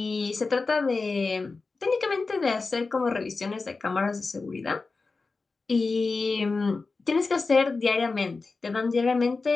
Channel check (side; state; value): right; quieter; 4.0 dB